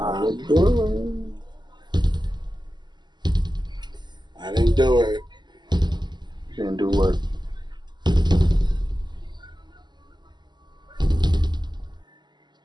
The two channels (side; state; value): left; late; 0.21 ms